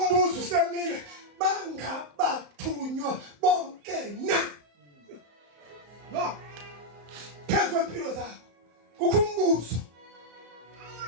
usemile bangabathunywa bonke na phezu kwempilo zabo kukho umbuzo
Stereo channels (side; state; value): left; late; 34 ms